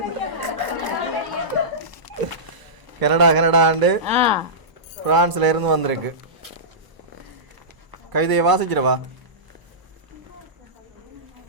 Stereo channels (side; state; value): left; late; 1.0 ms